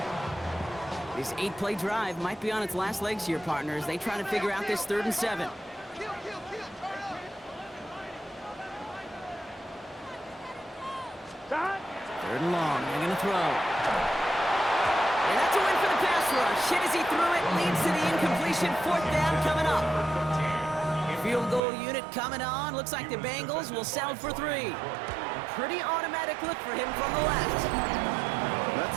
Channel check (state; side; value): drops out; left; at 21.6 s